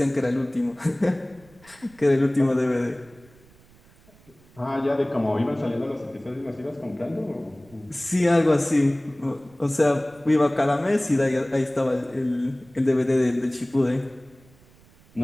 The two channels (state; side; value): noise; right; rumble, 28 dB below the sound